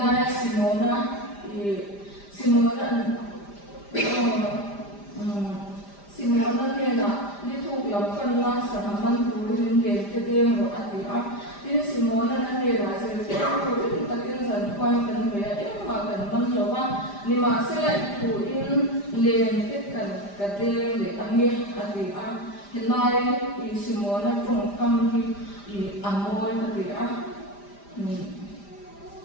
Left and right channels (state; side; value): late; right; 5.0 ms